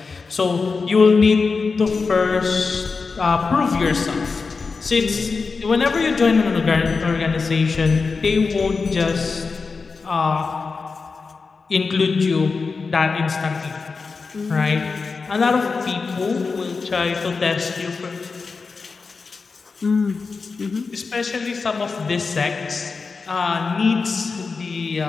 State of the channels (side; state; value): right; quieter; 4.6 dB